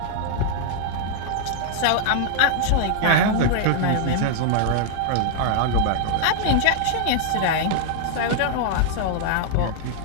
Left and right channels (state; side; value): different; both; correlation -0.01